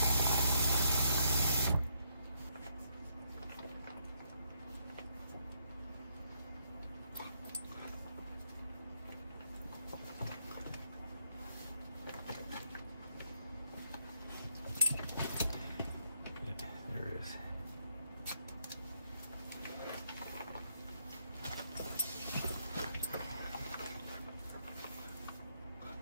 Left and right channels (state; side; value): inverted; both; correlation -0.74